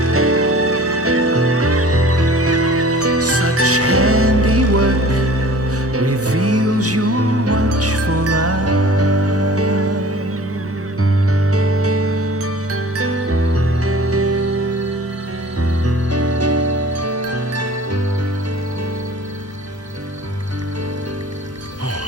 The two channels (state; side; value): normal; both; correlation 0.45